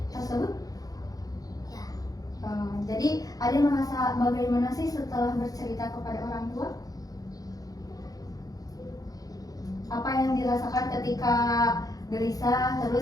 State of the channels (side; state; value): right; late; 0.18 ms